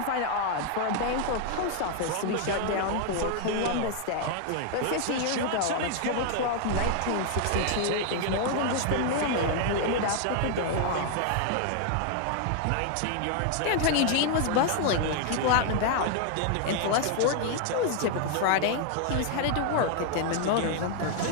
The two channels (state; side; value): different; both; correlation 0.00